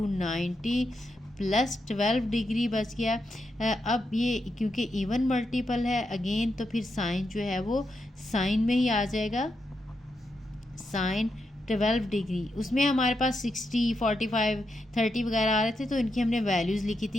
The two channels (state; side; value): normal; both; correlation 0.84